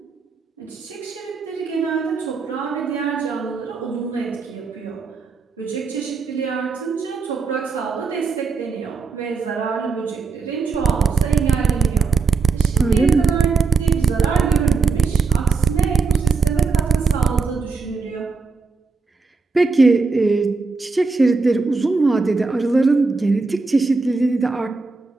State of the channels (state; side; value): quieter; left; 4.6 dB